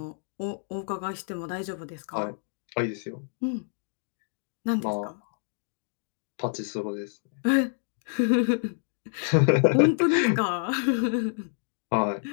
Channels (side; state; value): right; silent; digital silence